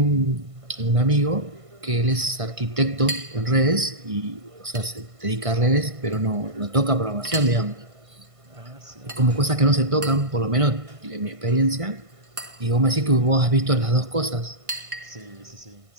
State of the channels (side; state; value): left; late; 1.5 ms